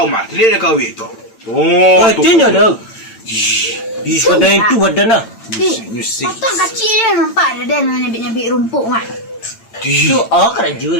mah. Celik dia kau tu. Oh, tu. Tanya dah. Ih, badan itu badan lah. Musik. Potong kecil dia nampak ada den nyabit-nyabit rumput mah. Tu kerja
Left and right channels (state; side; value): late; right; 8.9 ms